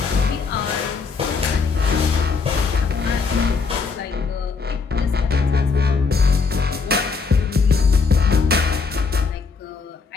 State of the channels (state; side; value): quieter; right; 4.8 dB